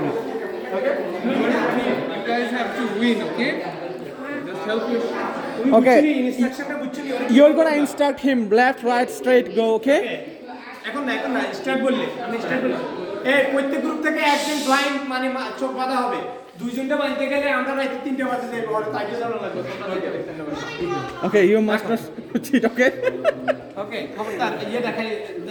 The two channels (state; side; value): identical; both; correlation 1.00